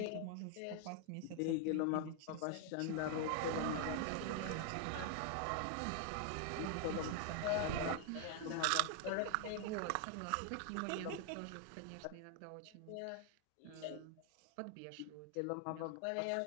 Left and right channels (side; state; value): both; different; correlation 0.00